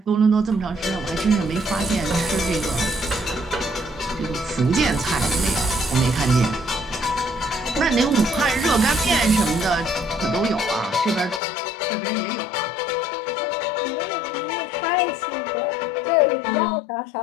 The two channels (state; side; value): drops out; right; at 11.4 s